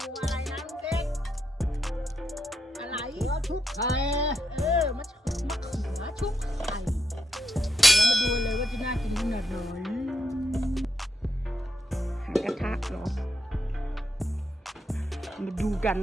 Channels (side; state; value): both; normal; correlation 0.83